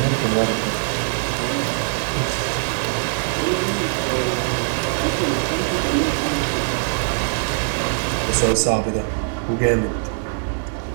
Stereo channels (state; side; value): silent; left; digital silence